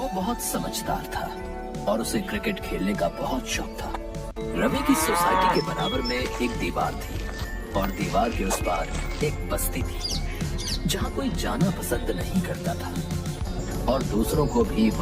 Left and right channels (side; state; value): both; identical; correlation 1.00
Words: बहुत समझदार था और उसे क्रिकेट खेलने का बहुत शौक था। रवि की सोसाइटी के बराबर में एक दीवार थी और दीवार के उस पार एक बस्ती थी जहाँ कोई जाना पसंद नहीं करता था और दूसरों को भी